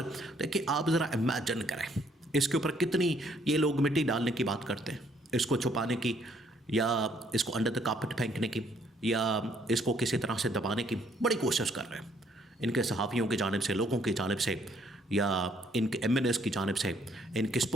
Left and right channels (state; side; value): normal; both; correlation 0.66